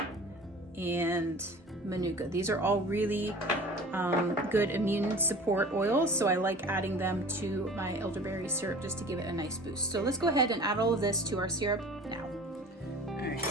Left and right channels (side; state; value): both; normal; correlation 0.42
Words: and manuka. These are all really good immune support oils, so I like adding them to my elderberry syrup just to give it a nice boost. So let's go ahead and add all of this to our syrup now. All right,